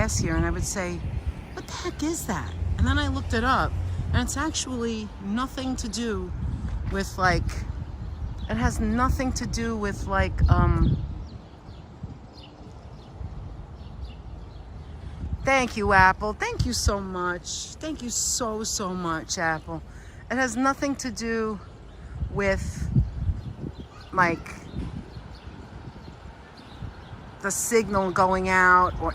here and I would say, what the heck is that? And then I looked it up and it's actually nothing to do with like, it has nothing to do with like, thank you, Apple. Thank you so much. Thank you so, so much, Apple. It has nothing to do with like the signal going out or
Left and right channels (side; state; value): both; identical; correlation 1.00